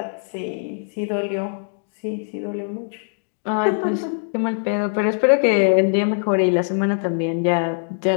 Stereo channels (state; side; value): silent; right; digital silence